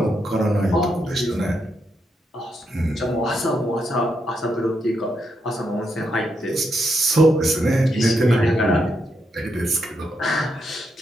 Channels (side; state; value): both; normal; correlation 0.81